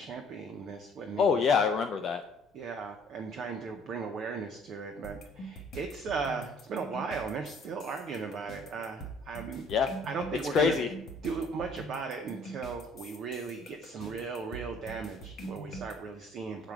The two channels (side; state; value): both; normal; correlation 0.57